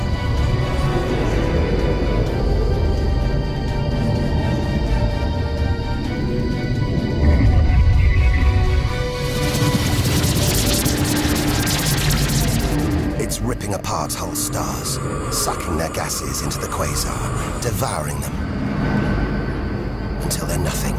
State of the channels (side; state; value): both; identical; correlation 1.00